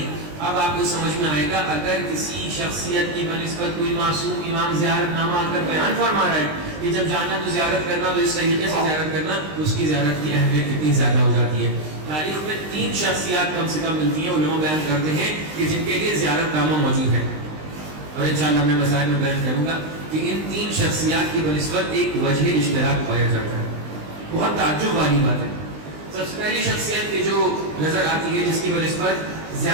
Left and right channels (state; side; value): late; left; 20 ms